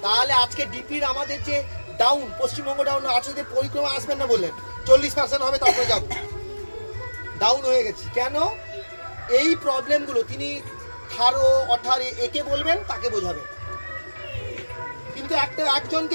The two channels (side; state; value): both; inverted; correlation -1.00